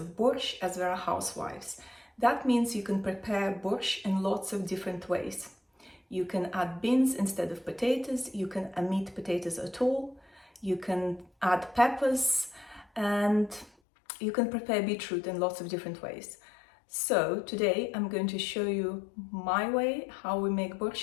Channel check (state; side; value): drops out; right; at 13.7 s